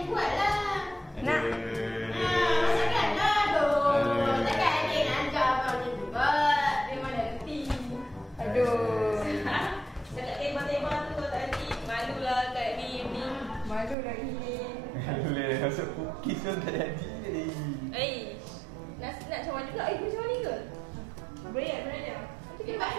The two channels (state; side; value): drops out; left; at 14.0 s